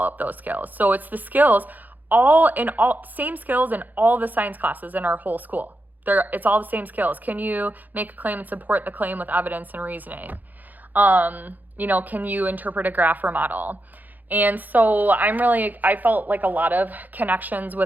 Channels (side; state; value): left; late; 0.083 ms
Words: those skills. So it's the skills, same skills in all the science classes in our whole school. It's all the same skills. Can you make a claim and support the claim with evidence and reasoning? Can you interpret a graph or model? And so I felt like a lot of connections